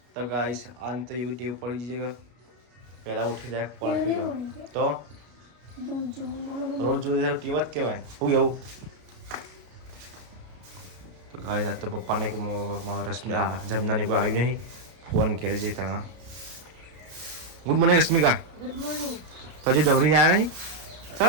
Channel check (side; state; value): left; late; 33 ms